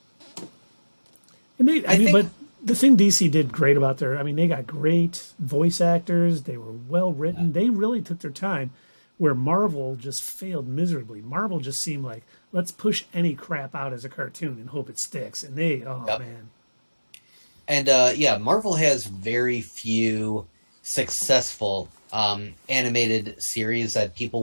and they, I think- but the thing DC did great about they got great voice actors. They were well written. They really took their time, where Marvel just failed miserably. Marvel just seemed like, let's push any crap out as a cartoon and hope it sticks. And they, Yep. man. And Marvel has very few successful animated series that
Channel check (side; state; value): both; inverted; correlation -1.00